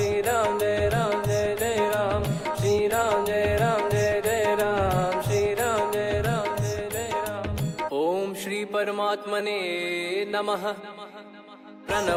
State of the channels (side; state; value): both; identical; correlation 1.00